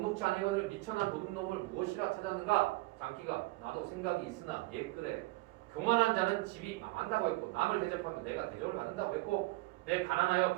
아니거늘 미천한 도둑놈을 무엇이라 찾았는가? 장기가 나도 생각이 있으나 옛글에 교만한 자는 집이 망한다고 했고 남을 대접하면 내가 대접을 받는다고 했고 내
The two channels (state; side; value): quieter; left; 21.4 dB